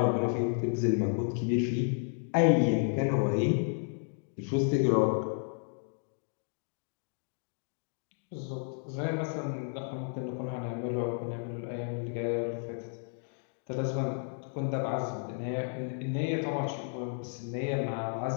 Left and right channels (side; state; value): right; silent; 56 dB below the other